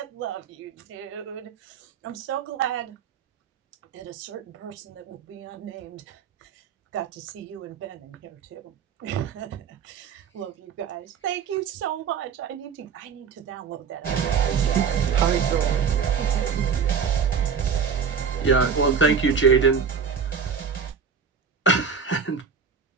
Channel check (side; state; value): left; quieter; 6.3 dB